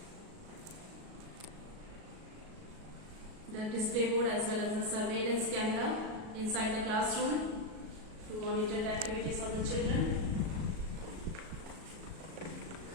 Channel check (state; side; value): late; left; 37 ms